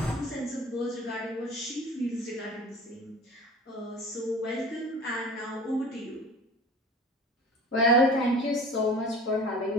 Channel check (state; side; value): normal; both; correlation 0.40